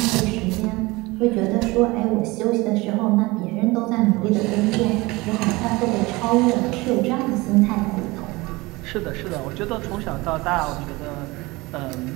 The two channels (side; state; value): left; quieter; 22.3 dB